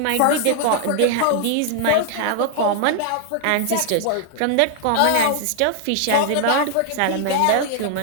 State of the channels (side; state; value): both; different; correlation 0.00